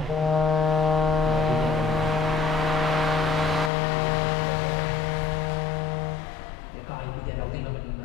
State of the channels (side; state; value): right; drops out; at 3.7 s